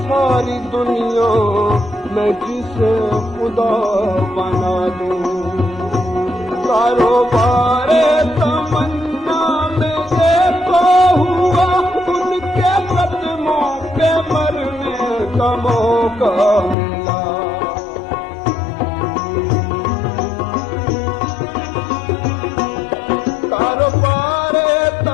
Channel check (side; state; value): right; drops out; at 16.8 s